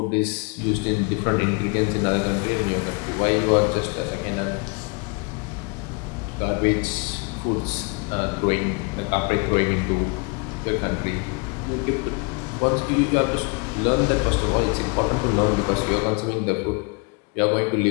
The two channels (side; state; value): right; quieter; 31.8 dB